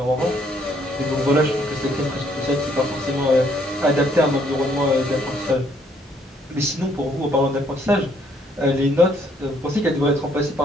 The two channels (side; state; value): both; normal; correlation 0.67